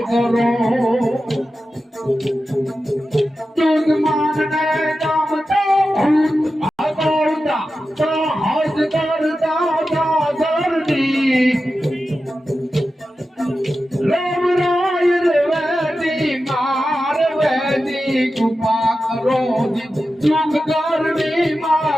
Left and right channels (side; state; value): both; normal; correlation 0.92